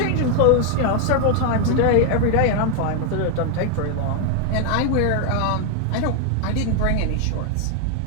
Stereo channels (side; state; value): both; different; correlation 0.00